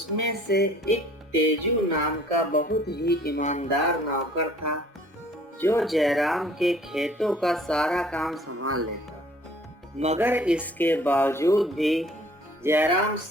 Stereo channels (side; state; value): both; normal; correlation 0.55